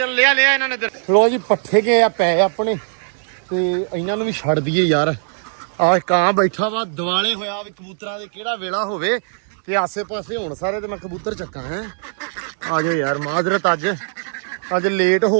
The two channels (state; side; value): silent; left; 63 dB below the other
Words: ਲਿਆ ਇਹਨਾਂ ਨੇ। ਲੋ ਜੀ ਪੱਠੇ ਗਏ ਆ ਪੈ ਆਪਣੇ ਤੇ ਇਹਨਾਂ ਨੂੰ ਵੀ ਛੱਡ ਦਈਏ ਯਾਰ। ਆਹ ਕਾਂ ਬੈਠਾ ਵਾ ਦਿਵਾਲੇ ਹੋਇਆ ਵੀ ਕਬੂਤਰਾਂ ਦੇ ਕਿਹੜਾ ਵੇਲਾ ਹੋਵੇ ਤੇ ਆਸੇ ਪਾਸੇ ਹੋਣ ਸਾਰੇ ਤੇ ਮੈਂ ਕਬੂਤਰ ਚੱਕਾਂ ਹੈ। ਆ ਜਾਓ ਯਾਰ, ਮਾਜ਼ਰਤ ਅੱਜ ਲੇਟ